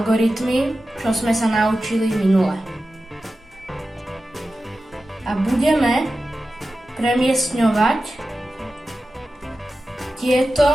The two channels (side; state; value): both; normal; correlation 0.93